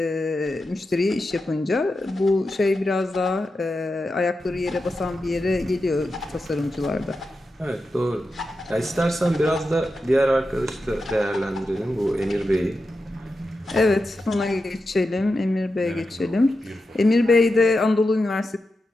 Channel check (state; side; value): normal; both; correlation 0.90